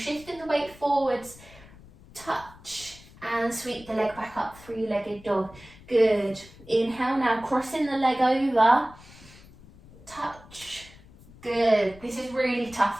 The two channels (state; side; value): noise; left; rumble, 22 dB below the sound